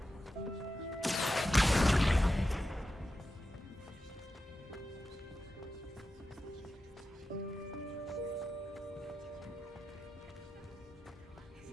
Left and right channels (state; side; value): normal; both; correlation 0.91